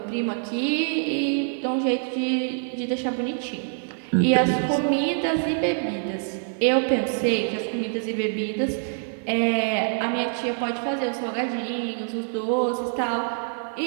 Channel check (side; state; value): left; silent; 58 dB below the other